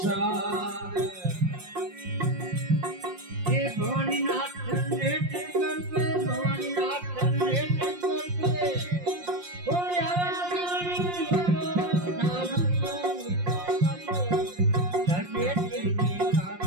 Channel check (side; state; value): left; late; 5.7 ms